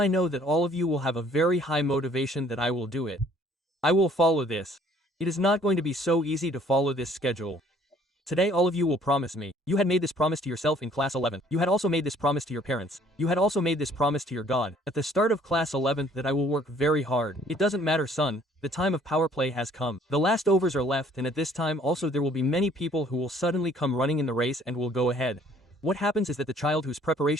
know that all of you will have a very high motivation that I will do it. I will follow this. It is not going to be so easy to follow this schedule. Today all of you will promise me. You had made this promise to yourself in class 11. You had also made this promise to your parents. You had also made this promise to your God at the start of class 11 that I will work very hard. It doesn't matter, son. The time of power play has come. The last overs are left, and at this time also there will be many people who will suddenly come running in the race and will go ahead. What happens is that the child whose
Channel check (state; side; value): normal; both; correlation 0.58